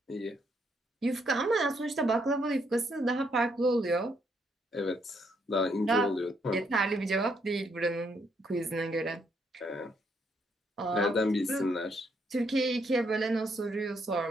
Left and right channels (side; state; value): both; normal; correlation 0.74